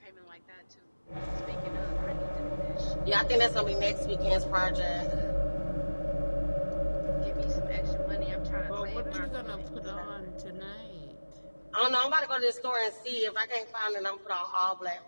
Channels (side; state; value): both; inverted; correlation -1.00